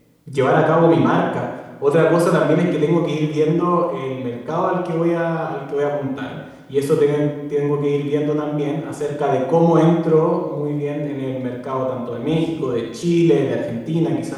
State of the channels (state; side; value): identical; both; correlation 1.00